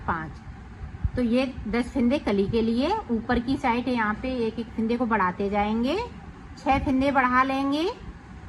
5। तो ये 10 फिंदे कली के लिए। ऊपर की साइड यहाँ पे एक एक फिंदे को बढ़ाते जाएंगे, 6 फिंदे बढ़ा लेंगे।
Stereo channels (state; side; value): identical; both; correlation 1.00